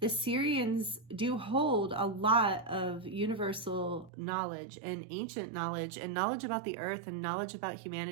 Sirians do hold a lot of universal knowledge and ancient knowledge and knowledge about the earth and knowledge about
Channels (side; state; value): left; drops out; at 4.1 s